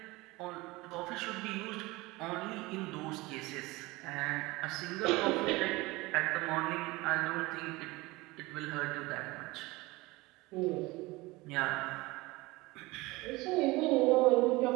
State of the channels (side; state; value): left; quieter; 21.8 dB